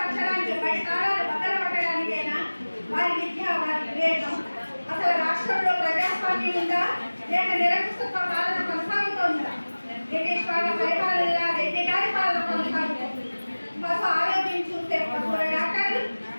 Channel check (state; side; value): inverted; both; correlation -1.00